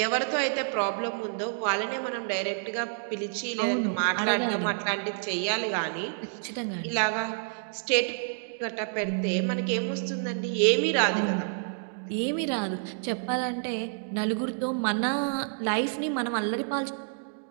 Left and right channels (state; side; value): silent; left; digital silence